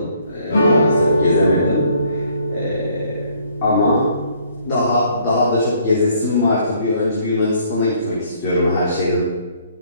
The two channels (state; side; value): inverted; both; correlation -0.64